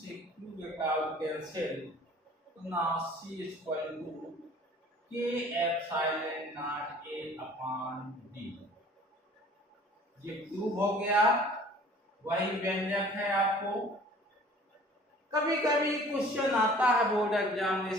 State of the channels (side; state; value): both; normal; correlation 0.50